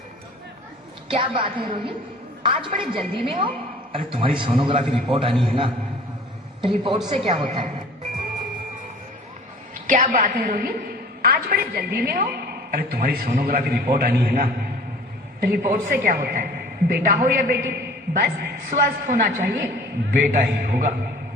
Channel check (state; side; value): normal; both; correlation 0.47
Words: क्या बात है रोहित, आज बड़े जल्दी में हो? अरे तुम्हारी सोनोग्राफी रिपोर्ट आनी है ना। रिपोर्ट से क्या होता है? क्या बात है रोहित, आज बड़े जल्दी में हो? अरे तुम्हारी सोनोग्राफी रिपोर्ट आनी है ना। रिपोर्ट से क्या होता है? बेटा हो या बेटी, बस स्वस्थ होना चाहिए। बेटा ही होगा।